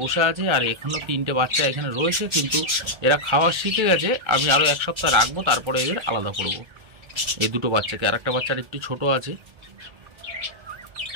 বসে আছে, আর এখনও 3টে বাচ্চা এখানে রয়েছে। কিন্তু এরা খাওয়া শিখে গেছে, আমি আরও 1 সপ্তাহ রাখবো, তারপরে এদের আলাদা করব এই 2টো বাচ্চাকে। আর একটা বাচ্চার একটু ছোট আছে।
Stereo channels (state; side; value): late; left; 1.3 ms